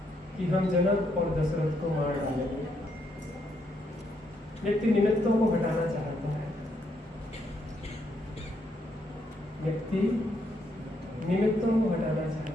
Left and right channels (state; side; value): normal; both; correlation 0.75